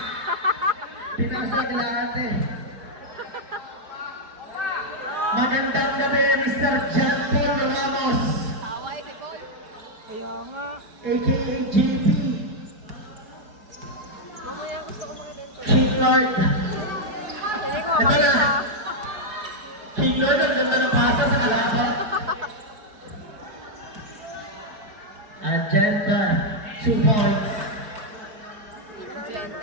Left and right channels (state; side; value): late; left; 4.7 ms